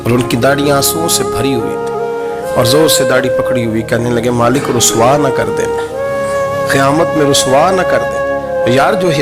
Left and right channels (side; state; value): both; identical; correlation 1.00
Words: اور ان کی داڑھی آنسوؤں سے بھری ہوئی تھی اور زور سے داڑھی پکڑی ہوئی. کہنے لگے مالک رسوا نہ کر دینا، قیامت میں رسوا نہ کر دیں. یار جو